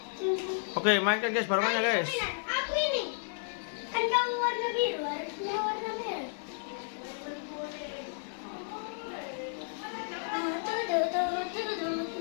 Oke, mainkan guys barongannya guys. Aku ini kan kamu warna biru, harusnya warna merah.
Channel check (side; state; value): right; silent; 56 dB below the other